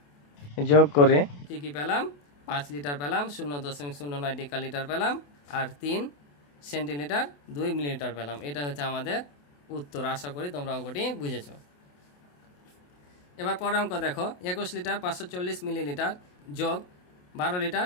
যোগ করে কি কি পেলাম, 5 লিটার পেলাম, 0.09 ডেকালিটার পেলাম, আর 3 সেন্টিলিটার 2 মিলিলিটার পেলাম। এটা হচ্ছে আমাদের উত্তর। আশা করি তোমরা অঙ্কটি বুঝেছো। এবার পরের অঙ্ক দেখো, 21 লিটার 540 মিলিলিটার যোগ 12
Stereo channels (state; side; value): late; right; 28 ms